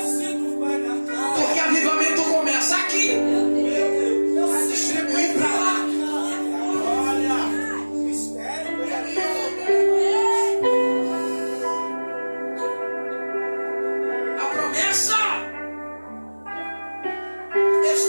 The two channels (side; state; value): both; inverted; correlation -1.00